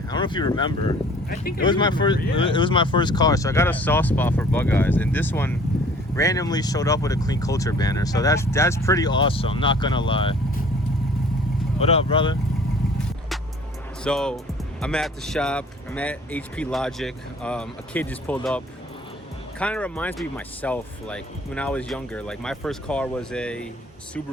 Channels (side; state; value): both; normal; correlation 0.52